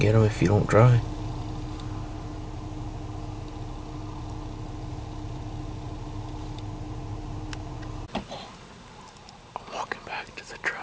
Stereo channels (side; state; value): both; identical; correlation 1.00